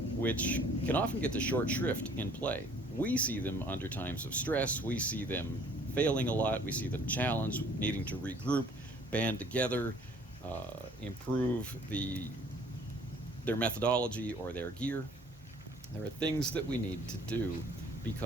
which can often get the short shrift in play. We see them under times of stress, we see them failing a lot, we see them challenged, needing to regroup, band together, improve their methodology or their gear. There are things that we need to do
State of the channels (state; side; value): normal; both; correlation 0.55